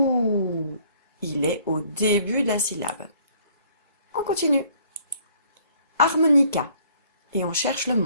Il est au début de la syllabe. On continue. Harmonica. Et on cherche le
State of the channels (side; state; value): both; inverted; correlation -0.60